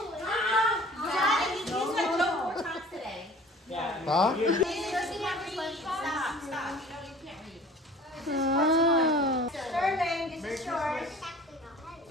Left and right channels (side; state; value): both; normal; correlation 0.46